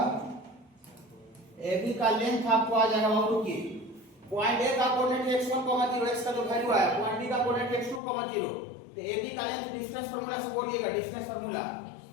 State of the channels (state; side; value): drops out; right; at 8.0 s